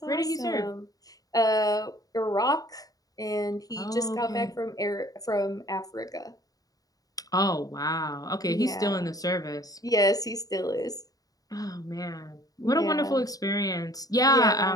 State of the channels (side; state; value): right; late; 0.18 ms